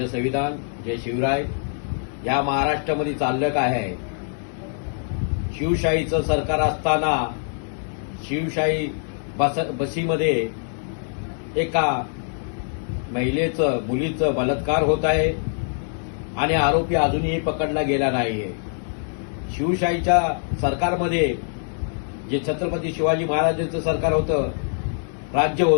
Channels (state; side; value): silent; right; 59 dB below the other